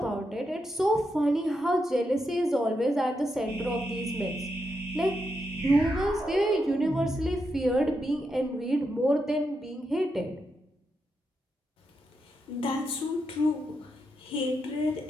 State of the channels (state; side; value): normal; both; correlation 0.84